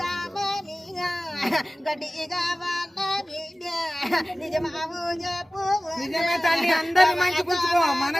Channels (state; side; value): normal; both; correlation 0.97